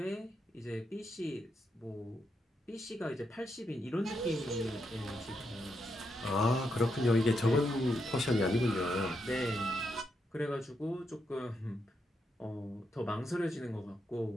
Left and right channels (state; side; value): normal; both; correlation 0.82